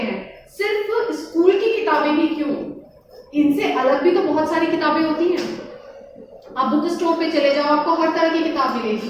सिर्फ स्कूल की किताबें ही क्यों, इनसे अलग भी तो बहुत सारी किताबें होती हैं। आप बुक स्टोर पे चले जाओ, आपको हर तरह की किताब मिलेगी,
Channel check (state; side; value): identical; both; correlation 1.00